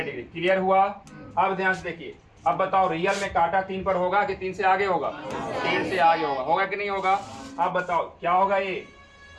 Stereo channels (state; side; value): identical; both; correlation 1.00